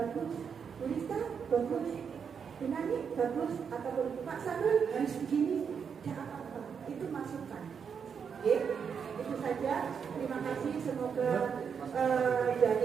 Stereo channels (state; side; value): quieter; left; 6.7 dB